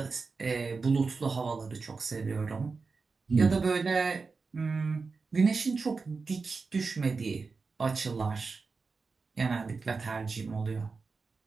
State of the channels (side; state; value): left; quieter; 4.5 dB